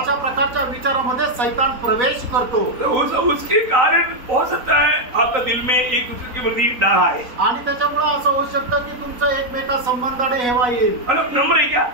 प्रकारच्या विचारामध्ये शैतान प्रवेश करतो। तो उसके कारण हो सकता है आपका दिल में एक दूसरे के प्रति डर आए, आणि त्याच्यामुळे असं होऊ शकतं की तुमचं एकमेका संबंधाने हेवा येईल। मतलब नम्र है क्या?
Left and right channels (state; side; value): late; left; 4.0 ms